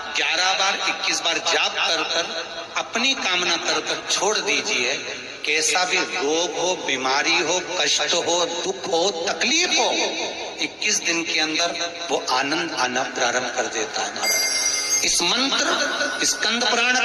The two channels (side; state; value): both; identical; correlation 1.00